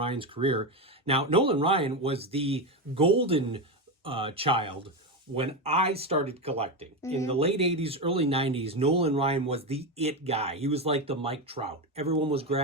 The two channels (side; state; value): both; normal; correlation 0.13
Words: career. Now, Nolan Ryan was the golden child when I started collecting. In the late 80s, early 90s, Nolan Ryan was the it guy. He was like the Mike Trout. Everyone was